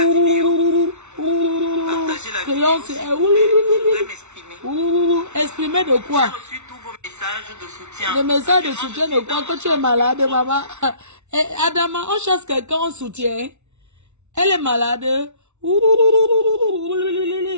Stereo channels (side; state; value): left; late; 0.82 ms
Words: vidéo. Partager la vidéo. Je voudrais m'exprimer. Exprimer de quoi? J'ai reçu tous vos messages de soutien. Le message de soutien de quoi? Quand tu es malade, maman. Adama, on chasse quelqu'un en soutien. Elle est malade.